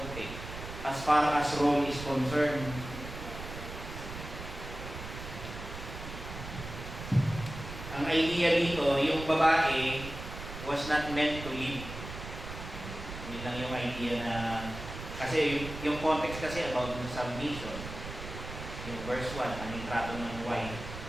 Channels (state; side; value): noise; right; rumble, 10 dB below the sound